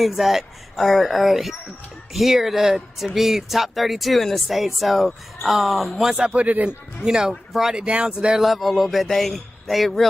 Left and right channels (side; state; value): both; normal; correlation 0.97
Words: that are here to be top 32 in the state. So once I put it in, you know, brought it down to their level a little bit, they